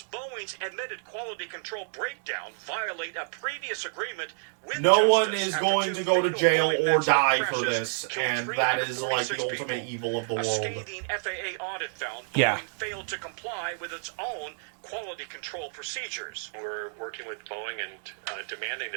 Boeing's admitted quality control breakdown violate a previous agreement with No Justice one is after going 2 to go to fatal jail Boeing or Max die 8 for crashes this, killed and that is like 346 the ultimate people. evil of the A world. scathing FAA audit found Yeah. Boeing failed to comply with its own quality control procedures. We're working with Boeing and demanding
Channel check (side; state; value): left; silent; digital silence